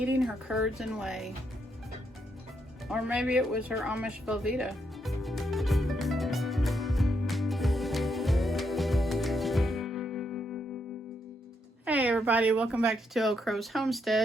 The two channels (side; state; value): both; normal; correlation 0.78